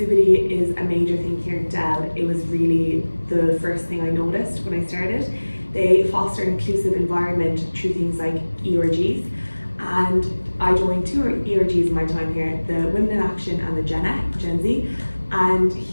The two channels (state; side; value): inverted; both; correlation -1.00